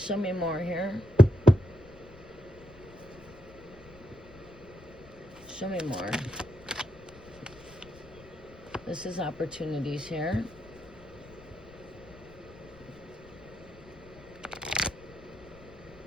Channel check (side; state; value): left; noise; rumble, 21 dB below the sound